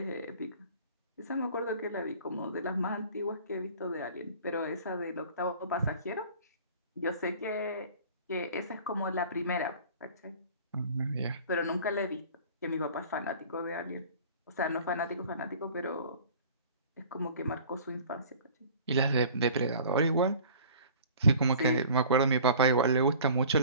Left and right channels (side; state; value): both; inverted; correlation -0.46